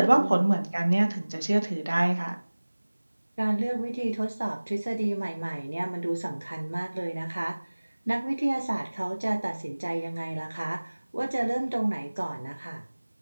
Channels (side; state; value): both; inverted; correlation -1.00